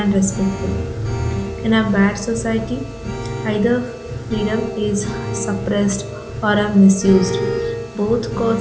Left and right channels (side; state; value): both; identical; correlation 1.00